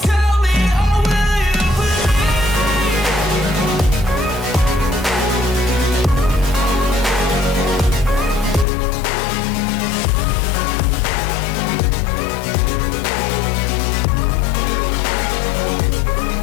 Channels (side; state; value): right; drops out; at 8.7 s